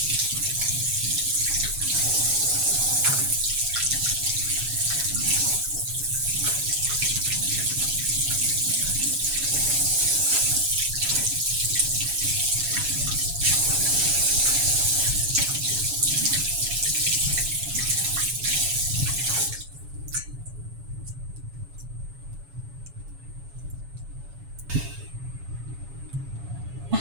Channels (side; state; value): left; late; 7.2 ms